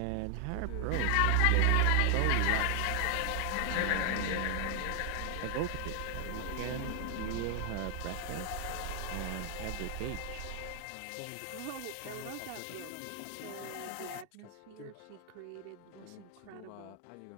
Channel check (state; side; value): different; both; correlation 0.00